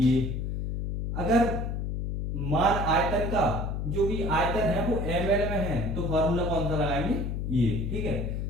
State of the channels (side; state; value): left; noise; hum, 2 dB below the sound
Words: अगर मान आयतन का जो भी आयतन है वो ml में है तो फॉर्मूला कौन सा लगाएंगे? ये। ठीक है,